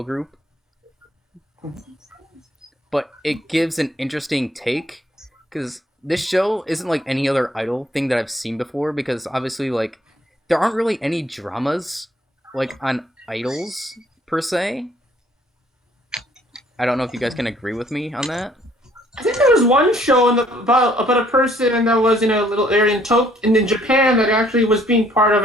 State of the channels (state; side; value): normal; both; correlation 0.63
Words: group, but it gives an interesting take because this show isn't like any other idol thing that I've seen before, because obviously like there aren't really any dramas like on idols per se. I don't know if you guys can agree with me on that. I think there was one show about a person that was in a little area in Japan that actually was being part of